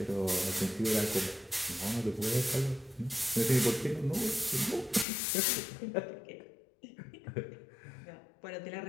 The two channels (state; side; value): drops out; right; at 5.1 s